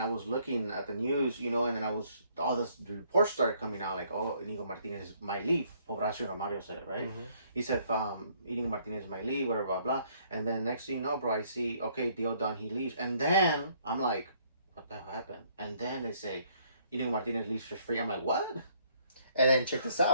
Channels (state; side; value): inverted; both; correlation -0.65